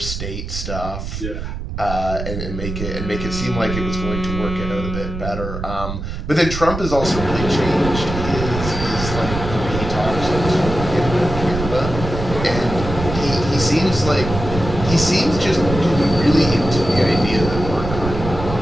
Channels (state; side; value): noise; right; rumble, 6 dB below the sound